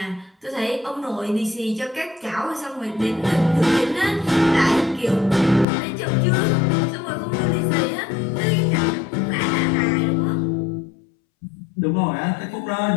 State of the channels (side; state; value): right; drops out; at 5.7 s